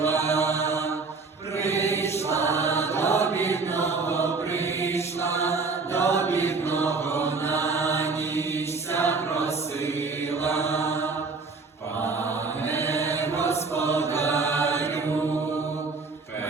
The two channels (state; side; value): quieter; left; 4.3 dB